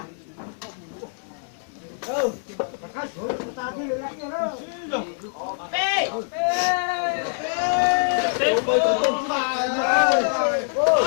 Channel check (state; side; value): silent; right; 62 dB below the other